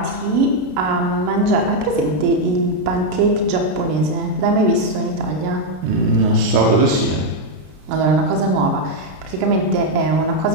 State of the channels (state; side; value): late; left; 33 ms